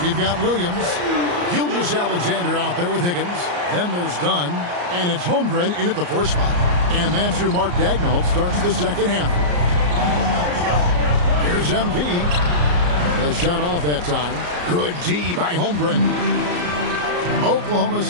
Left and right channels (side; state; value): left; late; 34 ms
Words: We've got Williams, Gilgeous-Alexander out there with Higgins. Then there's Dunn, and it's Holmgren in at the 4 spot. And that's who Mark Daigneault starts the second half. Here's MP. A shot off that time. Good D by Holmgren. Oklahoma